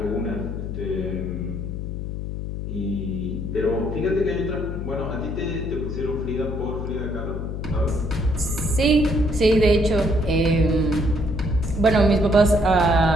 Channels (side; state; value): left; noise; hum, 5 dB below the sound